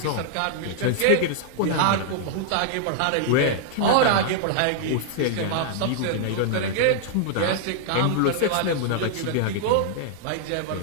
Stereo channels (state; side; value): different; both; correlation -0.01